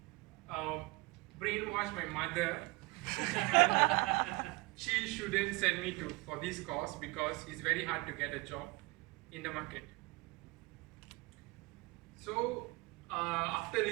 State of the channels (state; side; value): quieter; left; 24.8 dB